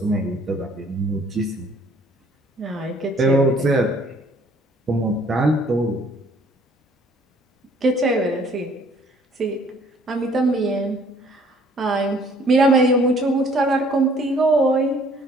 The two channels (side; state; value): both; normal; correlation 0.58